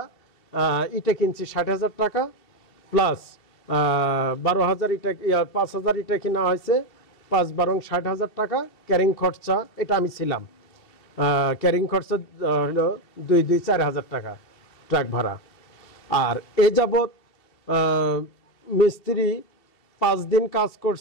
ইটা কিনছি 60,000 টাকা, প্লাস 12,000 ইটা, 5,000 ইটা কিনা হয়েছে, 5-12 60,000 টাকা। ক্যারিং খরচা, এটা আমি ছিলাম, ক্যারিং খরচা হলো 2-4,000 টাকা ট্রাক ভাড়া। আর এ যাবৎ মিস্ত্রি 5 দিন কাজ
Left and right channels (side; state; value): right; late; 2.7 ms